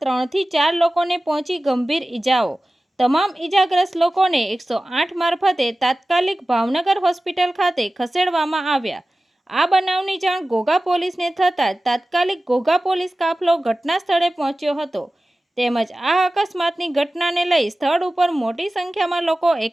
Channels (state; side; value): normal; both; correlation 0.96